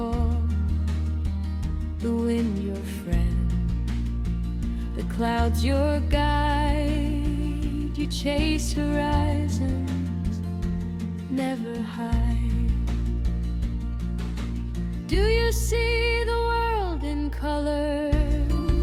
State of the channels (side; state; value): both; identical; correlation 1.00